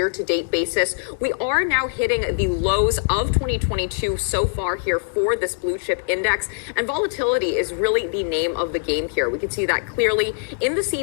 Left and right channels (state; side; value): silent; right; digital silence